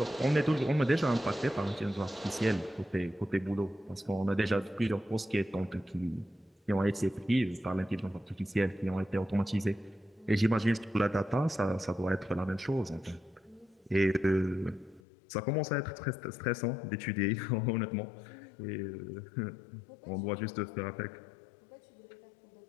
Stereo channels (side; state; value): right; drops out; at 15.0 s